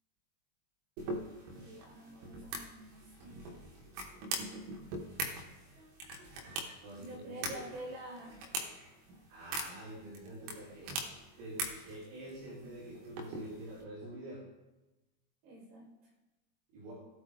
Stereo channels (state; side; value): late; left; 22 ms